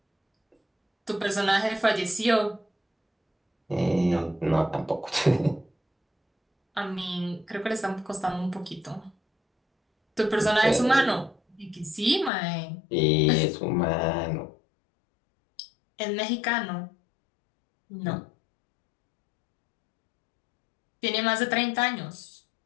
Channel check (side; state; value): right; drops out; at 12.3 s